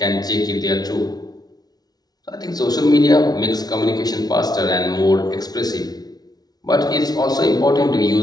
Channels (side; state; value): right; late; 0.19 ms